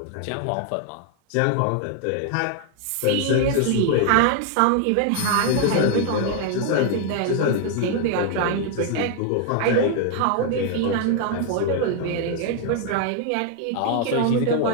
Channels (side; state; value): both; different; correlation 0.00